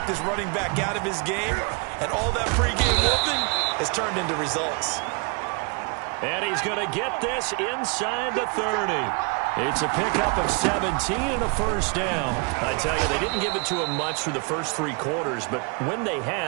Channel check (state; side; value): quieter; left; 33.8 dB